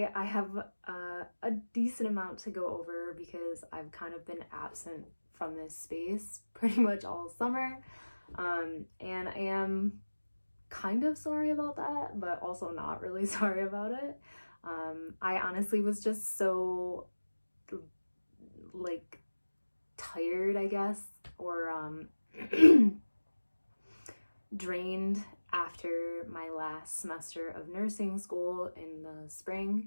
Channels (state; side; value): inverted; both; correlation -1.00